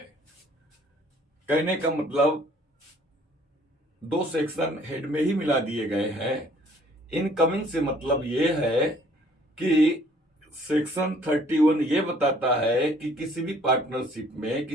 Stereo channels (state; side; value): normal; both; correlation 0.58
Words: कहने का मतलब दो सेक्शन हेड में ही मिला दिए गए हैं। इनकमिंग से मतलब ये है कि सेक्शन 31 ये बताता है कि किसी भी पार्टनरशिप में